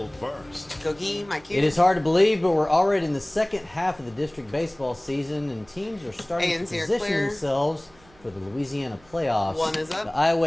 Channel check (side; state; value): right; noise; hum, 28 dB below the sound